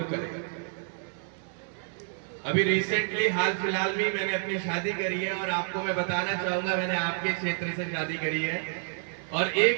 करें। अभी रिसेंटली हाल फिलहाल में मैंने अपनी शादी करी है और आपको मैं बताना चाहूंगा, मैंने आपके क्षेत्र से शादी करी है और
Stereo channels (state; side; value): silent; left; 56 dB below the other